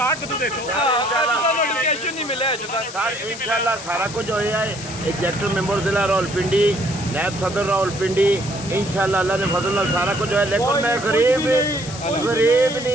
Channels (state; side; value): noise; left; hiss, 12 dB below the sound